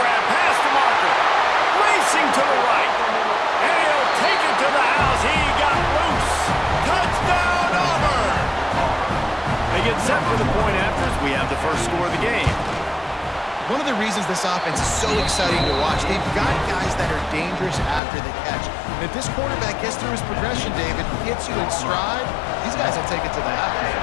pass to Marker. Racing to the right. And he'll take it to the house. He got loose. Touchdown, Auburn! They get set for the point after as we have the first score of the game. One of the reasons this offense is so exciting to watch, they've got guys that are dangerous after the catch. And if this quarterback gets through his progression, David, hits you in stride, these guys will take it to the house.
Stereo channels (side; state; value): right; drops out; at 18.0 s